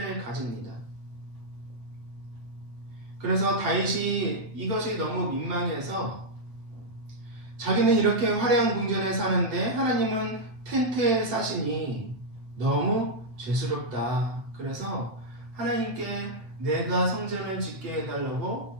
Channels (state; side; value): late; left; 8.4 ms